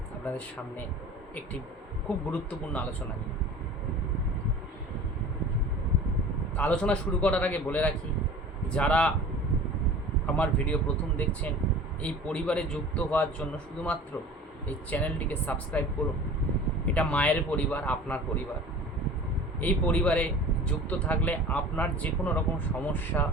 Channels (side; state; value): both; normal; correlation 0.41